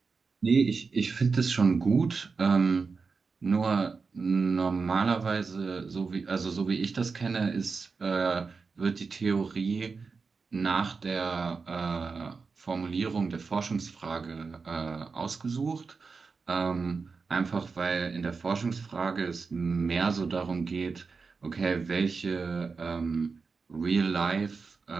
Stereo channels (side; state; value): left; quieter; 4.8 dB